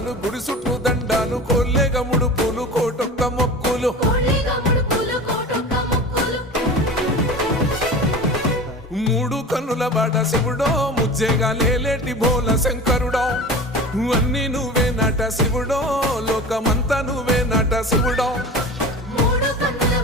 గుడి చుట్టూ దండాలు కొల్లేగ ముడుపులు కోటొక్క మొక్కులు మూడు కన్నుల వాడ శివుడో ముజ్జేగా లేలేటి బోల శంకరుడో అన్ని నువ్వే నట శివుడో లోకమంతా నువ్వే నట శివుడో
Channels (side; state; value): both; normal; correlation 0.34